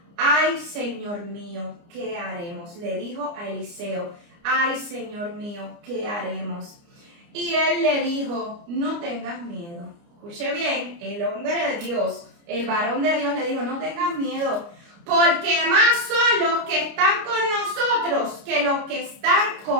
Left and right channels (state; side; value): late; left; 29 ms